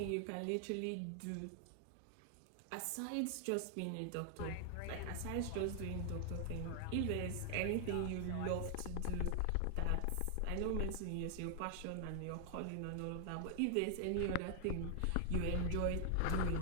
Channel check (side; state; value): both; different; correlation 0.00